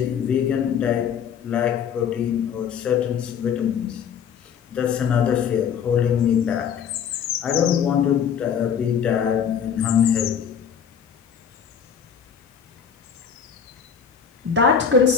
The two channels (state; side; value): quieter; right; 7.6 dB